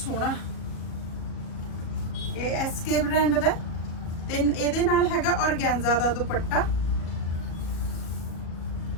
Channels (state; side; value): late; right; 38 ms